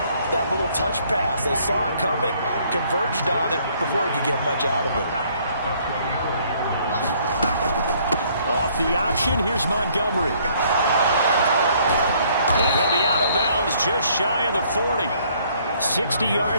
that little touch pass. They saw it coming, converged on it before he could get much out of it. Off the option, here's Montgomery. And he'll be out of bounds just shy of the 40. 60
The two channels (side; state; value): both; inverted; correlation -0.63